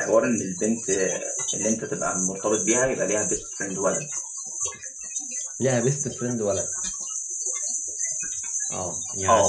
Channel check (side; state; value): both; identical; correlation 1.00